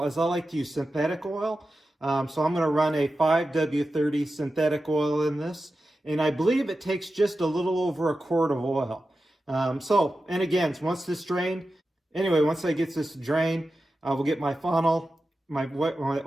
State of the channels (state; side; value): normal; both; correlation 0.92